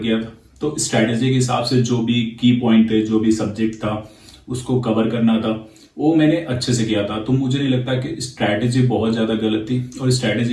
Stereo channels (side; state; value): both; identical; correlation 1.00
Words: था। तो स्ट्रैटेजी के हिसाब से जो भी की पॉइंट थे, जो भी सब्जेक्ट था उसको कवर करना था, वो मैंने अच्छे से किया था। तो मुझे नहीं लगता कि स्ट्रैटेजी बहुत ज़्यादा गलत थी और